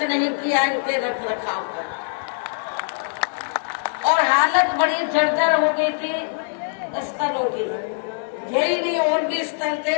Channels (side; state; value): right; silent; 60 dB below the other